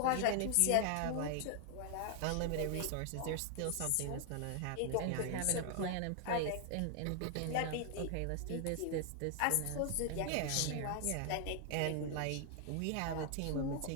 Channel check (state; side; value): different; both; correlation 0.00